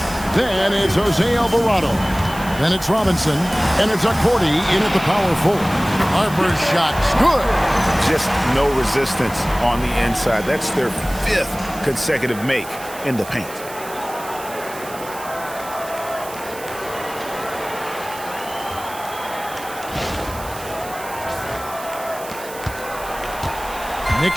Then it's Jose Alvarado. Then it's Robinson, and it's Accordi in at the power forward. Harper's shot's good. Just no resistance on the inside. That's their 5th consecutive make in the paint.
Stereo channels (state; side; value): noise; right; hiss, 15 dB below the sound